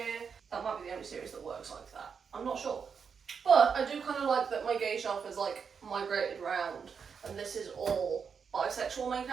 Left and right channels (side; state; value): left; quieter; 6.3 dB